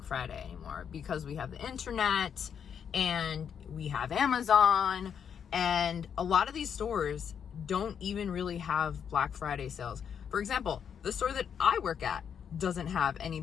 Friday anymore because we have the internet and we have Amazon, and a lot of these stores don't even really have Black Friday sales. For example, the store that I work at doesn't have any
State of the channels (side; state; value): right; quieter; 7.8 dB